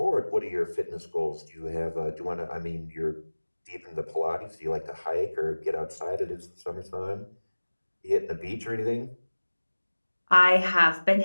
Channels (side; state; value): both; inverted; correlation -1.00